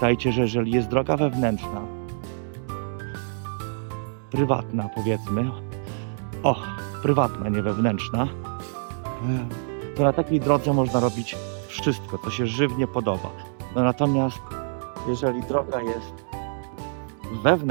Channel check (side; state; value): left; silent; digital silence